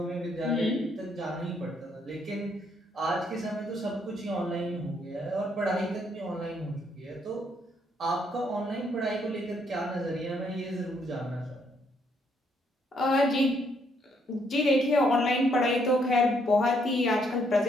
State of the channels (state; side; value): normal; both; correlation 0.71